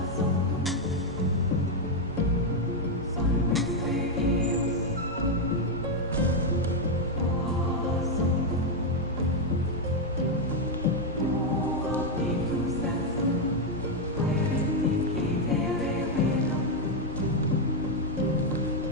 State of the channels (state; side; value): normal; both; correlation 0.02